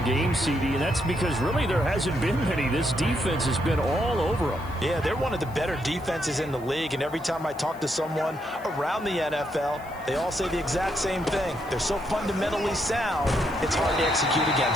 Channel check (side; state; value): left; noise; hiss, 25 dB below the sound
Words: game, CD, and that's because really there hasn't been many. This defense has been all over him. Yeah, they're one of the better defenses in the league, and every time I talk to someone around the NFL, they all say the exact same thing. They're so fundamentally sound, it's hard to execute